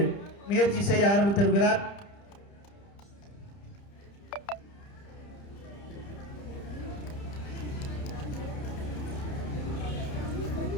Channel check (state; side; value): late; right; 30 ms